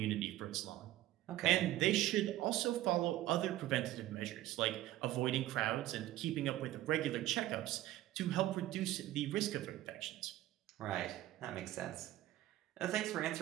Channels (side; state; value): left; quieter; 14.9 dB